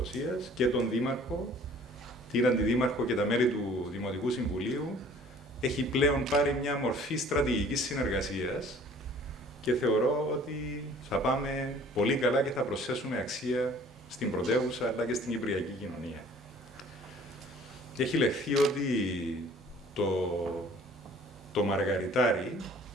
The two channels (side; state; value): both; normal; correlation 0.52